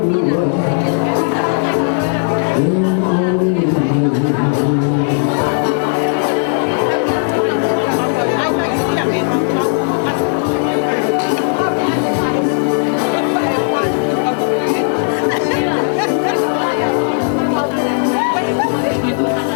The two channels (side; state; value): right; quieter; 37.5 dB